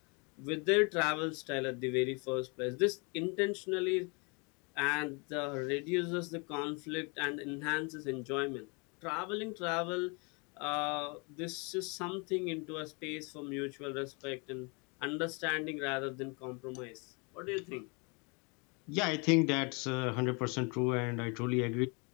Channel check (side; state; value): right; quieter; 31.9 dB